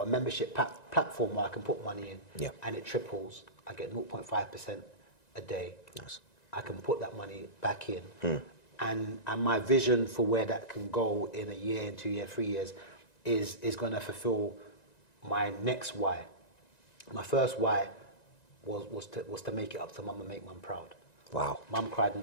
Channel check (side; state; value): right; late; 1.9 ms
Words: a membership platform where I can put money in, Yeah. and it triples. I get 0.5% a day. Nice. I can put that money back in. And my vision for where that can go in a year, in 2 years, 3 years, is going to fulfill my next why. My first why was to make it up to mum and make mum proud. Wow. Mum cried in